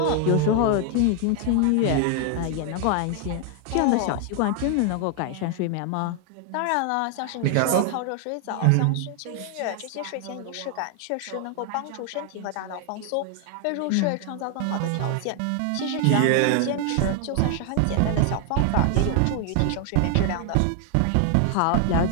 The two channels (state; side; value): different; both; correlation 0.00